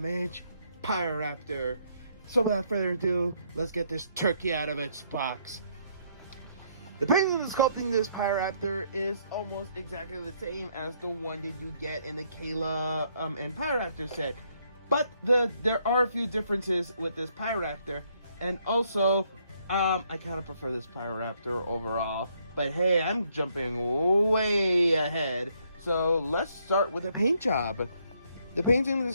Pyroraptor. So without further ado, let's get this turkey out of its box. The painting of sculpting this Pyroraptor is almost exactly the same as the one that you get in the Kayla and Pyroraptor set. But there are a few differences with this Pyroraptor. And also, I kind of prefer this Pyroraptor overall. But hey, I'm jumping way ahead. So let's start with the paint job. The painting of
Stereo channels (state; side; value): inverted; both; correlation -0.71